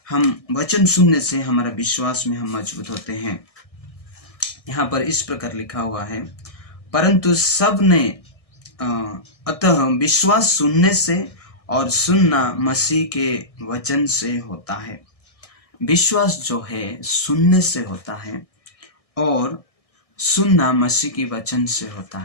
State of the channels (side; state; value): right; late; 1.6 ms